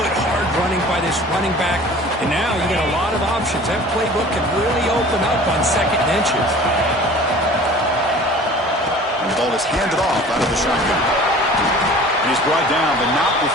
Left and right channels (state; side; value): normal; both; correlation 0.44